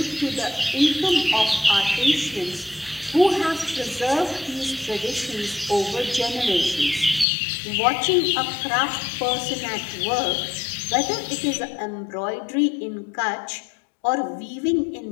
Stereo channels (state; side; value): drops out; right; at 7.2 s